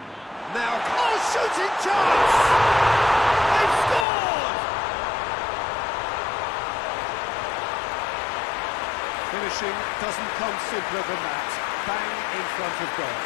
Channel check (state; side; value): drops out; right; at 4.0 s